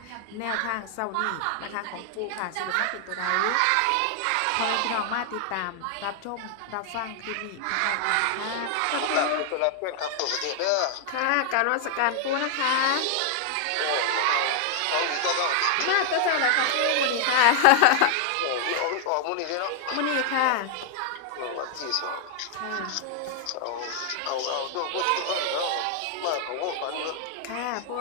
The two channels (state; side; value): different; both; correlation 0.00